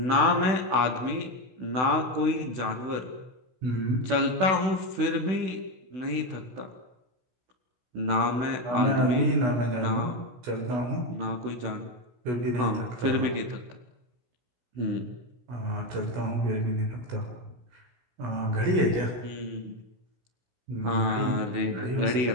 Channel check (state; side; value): late; left; 16 ms